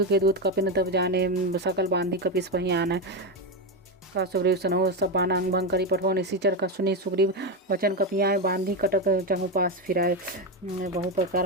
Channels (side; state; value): both; normal; correlation 0.11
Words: के दूत कपिन तब जाने, सकल बांधी कपिस पही आने। का सुग्रीव सनहो सब बाना अंग भंग करी। पठवा निशिचर का सुनी सुग्रीव, वचन कपियाए बांधी कटक चहु पास फिराए। बहु